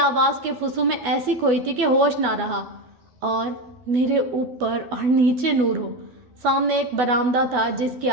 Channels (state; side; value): late; left; 12 ms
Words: کے فسوں میں ایسی کھوئی تھی کہ ہوش نہ رہا۔ اور میرے اوپر اور نیچے نور ہو۔ سامنے ایک برآمدہ تھا جس کے